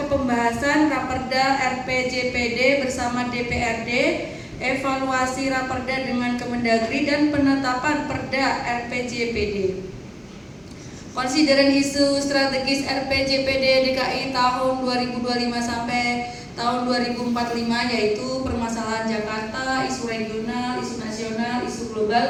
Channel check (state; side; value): identical; both; correlation 1.00